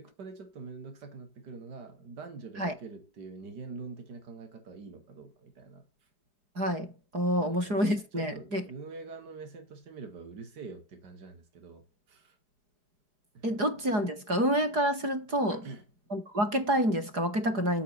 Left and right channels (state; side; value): late; left; 4.8 ms